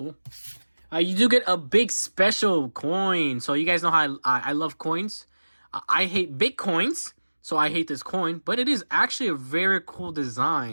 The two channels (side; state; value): both; inverted; correlation -1.00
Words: You do get a big special coin. So you guys know how I love coins. I hate big coins, so I hate this coin. But it is actually a very cool